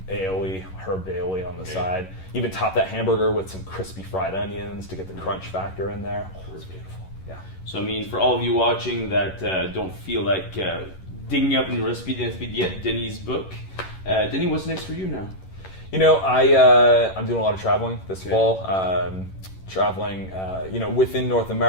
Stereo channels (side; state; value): right; late; 11 ms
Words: herb aioli on the side. Even top that hamburger with some crispy fried onions to get the crunch factor in there. Oh, it's beautiful. Yeah. So I mean, for all of you watching that don't feel like digging up in the recipe yet, Denis' book. Denis, what's next for you now? I'm doing a lot of traveling this fall. Traveling, within North